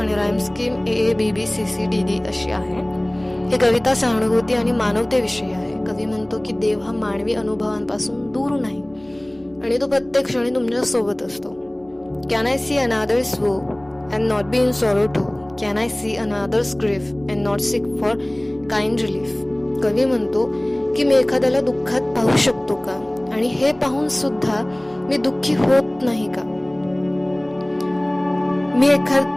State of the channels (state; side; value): noise; left; hum, 30 dB below the sound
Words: राईम स्कीम AABBCCDD अशी आहे. ही कविता सहानुभूती आणि मानवतेविषयी आहे. कवी म्हणतो की देव हा मानवी अनुभवांपासून दूर नाही आणि तो प्रत्येक क्षणी तुमच्या सोबत असतो. Can I see another's woe and not be in sorrow too? Can I see another's grief and not seek for kind relief? कवी म्हणतो की मी एखाद्याला दुःखात पाहू शकतो का आणि हे पाहून सुद्धा मी दुःखी होत नाही का? मी